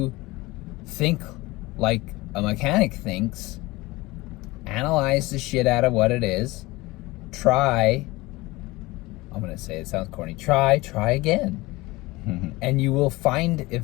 think like a mechanic thinks, analyze the shit out of what it is, try, I'm gonna say it sounds corny, try again. And you will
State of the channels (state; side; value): quieter; right; 21.0 dB